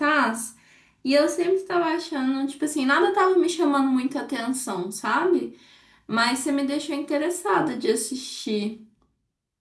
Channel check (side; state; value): both; identical; correlation 1.00